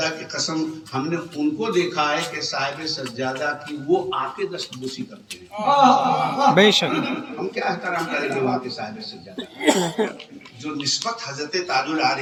کی قسم ہم نے ان کو دیکھا ہے کہ صاحب سجادہ کی وہ آ کے دستبوسی کرتے ہیں. بے شک ہم کیا احترام کریں گے وہاں کے صاحب سجادہ جو نسبت حضرت تاج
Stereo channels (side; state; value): both; identical; correlation 1.00